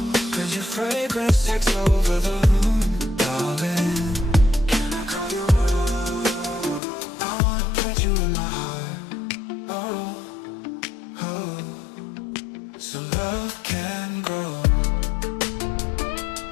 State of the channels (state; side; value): drops out; right; at 6.8 s